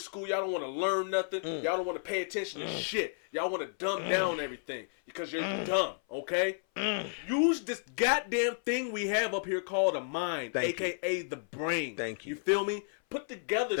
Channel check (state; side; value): silent; right; 56 dB below the other